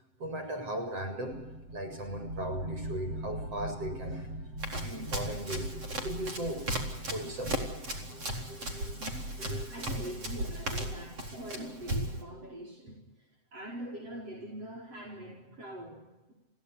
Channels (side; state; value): left; late; 7.8 ms